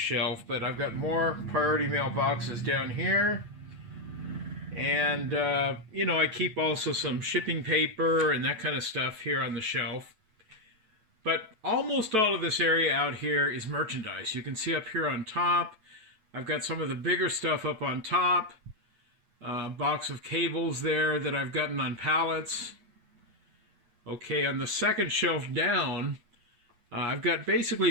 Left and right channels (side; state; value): left; late; 9.1 ms